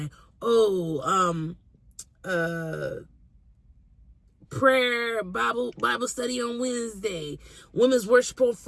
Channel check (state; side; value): identical; both; correlation 1.00